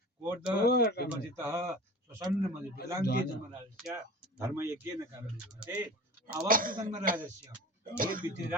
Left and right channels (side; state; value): both; normal; correlation 0.38